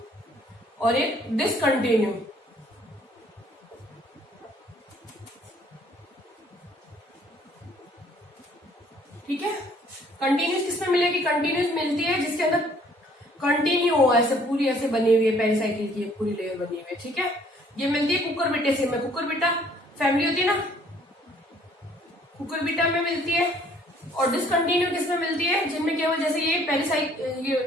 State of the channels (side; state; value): both; normal; correlation 0.60